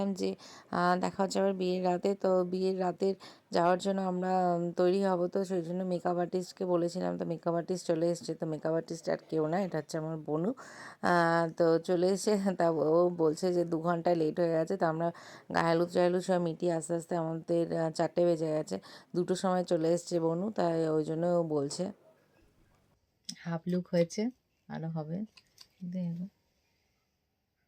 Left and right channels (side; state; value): both; identical; correlation 1.00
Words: যে দেখা হচ্ছে আবার বিয়ের রাতে। তো বিয়ের রাতের যাওয়ার জন্য আমরা তৈরি হব, তো সেই জন্য মেকআপ আর্টিস্টকে বলেছিলাম। তো মেকআপ আর্টিস্ট চলে এসছে। তো মেকআপ আর্টিস্ট আর কেউ না, এটা হচ্ছে আমার বোনু। তো চলে এসে তা ও বলছে যে 2 ঘন্টা লেট হয়ে গেছে। তো আমরা গায়ে হলুদ টাহলুদ সব মিটিয়ে আস্তে আস্তে আমাদের 4টে বেজে গেছে। 2টোর সময় চলে এসছে বোনু, তাই ওই জন্য ও বলছে। হাফ লুক হয়েছে, আরও হবে।